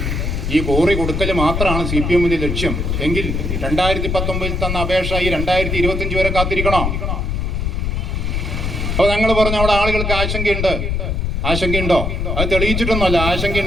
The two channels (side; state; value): left; noise; rumble, 1 dB below the sound